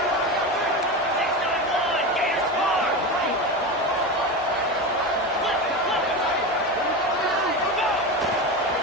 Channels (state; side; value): normal; both; correlation 0.22